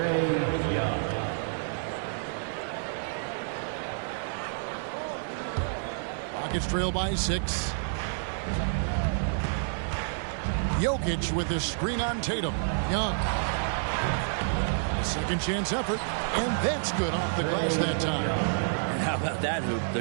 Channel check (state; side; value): silent; left; 56 dB below the other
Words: Young. Rockets trail by 6. Jokic with his screen on Tatum. Young. A second chance effort. And that's good off the glass that time. And how about that hoop?